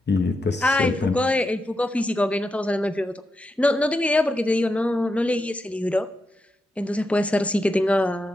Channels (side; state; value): both; normal; correlation 0.86